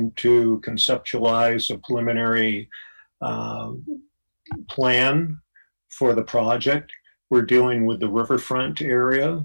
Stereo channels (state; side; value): inverted; both; correlation -1.00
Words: to conceptualize a preliminary plan for the project. We're dealing with the riverfront area,